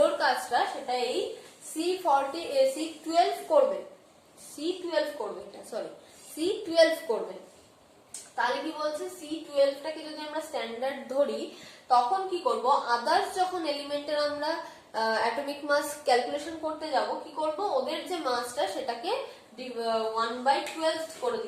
কাজটা সেটা এই C12 করবে C12 করবে এটা সরি C12 করবে তাহলে কি বলছে C12টাকে যদি আমরা স্ট্যান্ডার্ড ধরি তখন কি করব আদার্স যখন এলিমেন্টের আমরা অ্যাটমিক মাস ক্যালকুলেশন করতে যাব কি করব ওদের যে মাসটা সেটাকে 1/12 করে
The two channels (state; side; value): identical; both; correlation 1.00